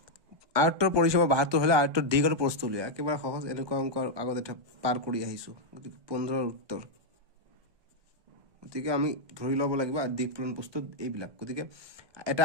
আয়তর পরিসীমা 72 হলে আয়তর দিক আর প্রস্থ লিয়া একেবারে সহজ এরকম অঙ্ক আগতে এটা পার কৰি আহিছো গতিকে 15 এৰ উত্তৰ গতিকে আমি ধৰি লব লাগিব আৰ দিক পূৰণ প্ৰস্থ এইবিলাক গতিকে এটা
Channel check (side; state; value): left; late; 1.2 ms